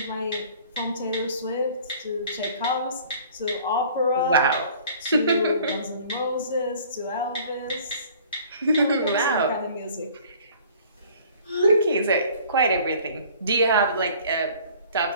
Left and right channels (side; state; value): both; inverted; correlation -0.51